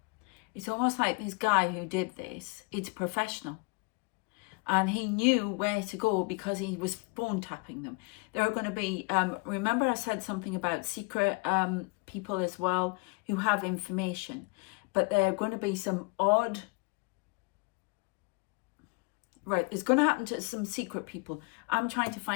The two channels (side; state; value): right; quieter; 30.1 dB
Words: It's almost like this guy who did this, it's professional. And he knew where to go because he was phone tapping them. There are going to be, remember I said something about secret people as well who have information. But there are going to be some odd, right, it's going to happen to some secret people. I'm trying to